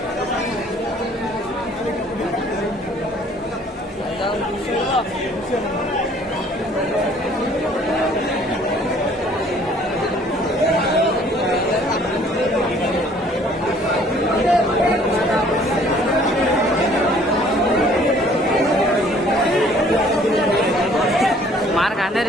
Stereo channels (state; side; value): normal; both; correlation 0.57